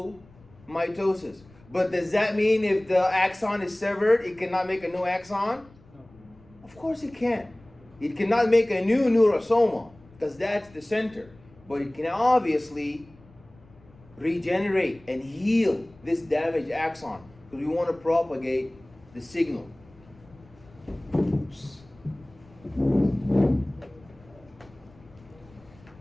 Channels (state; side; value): noise; left; rumble, 26 dB below the sound